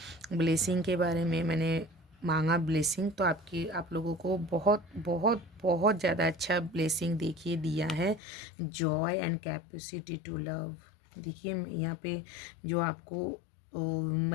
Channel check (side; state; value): right; drops out; at 8.2 s